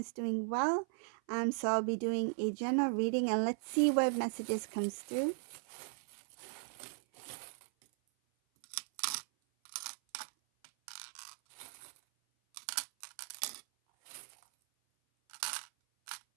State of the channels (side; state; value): left; silent; 53 dB below the other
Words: doing well. So I'll be doing a general reading and let's see what messages comes through.